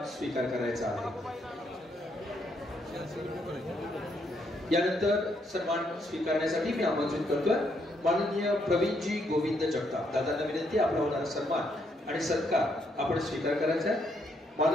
स्वीकार करायचा आहे. यानंतर सन्मान स्वीकारण्यासाठी मी आमंत्रित करतोय माननीय प्रवीणजी गोविंद जगताप. दादांना विनंती आपला होणारा सन्मान आणि सत्कार आपण स्वीकार करायचा आहे.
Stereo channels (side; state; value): both; normal; correlation 0.74